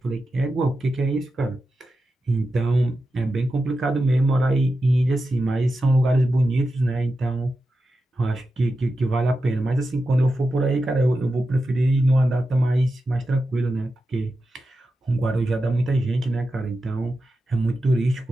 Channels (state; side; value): normal; both; correlation 0.90